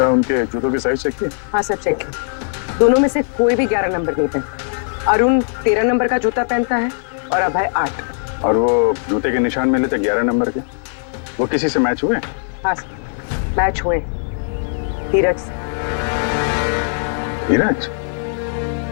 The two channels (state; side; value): silent; right; digital silence